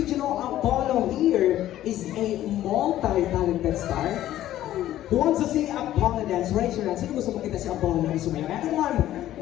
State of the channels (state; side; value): quieter; right; 13.2 dB